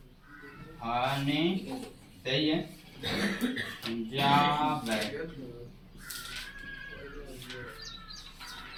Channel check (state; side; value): identical; both; correlation 1.00